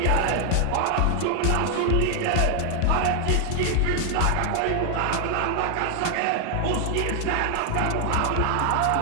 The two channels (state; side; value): different; both; correlation 0.00